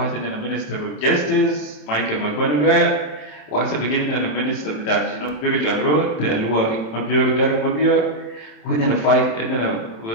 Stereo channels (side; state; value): right; late; 27 ms